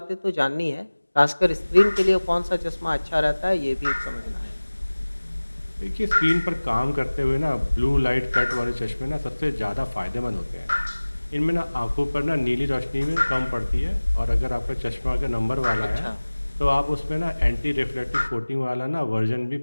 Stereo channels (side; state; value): both; inverted; correlation -1.00